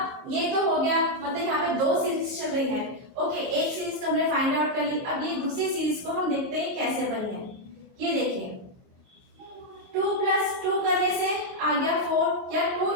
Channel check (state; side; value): late; left; 22 ms